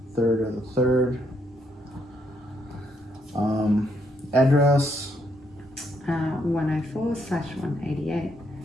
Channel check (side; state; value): both; normal; correlation 0.74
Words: 3rd of the 3rd. Address. 104/188